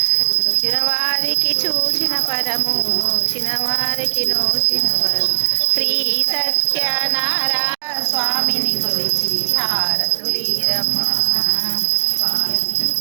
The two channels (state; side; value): silent; left; digital silence